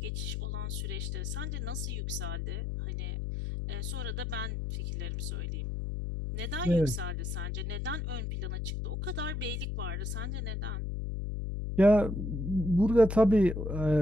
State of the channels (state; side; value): noise; left; hum, 3 dB below the sound